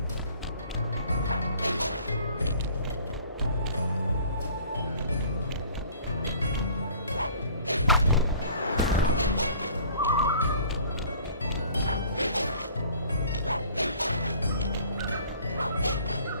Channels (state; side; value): inverted; both; correlation -0.51